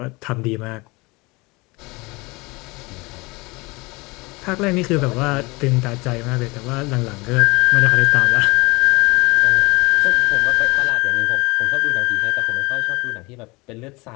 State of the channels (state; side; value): quieter; right; 24.7 dB